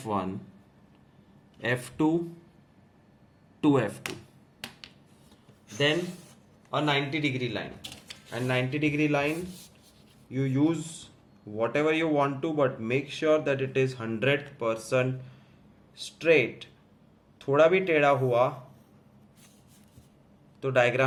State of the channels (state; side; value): identical; both; correlation 1.00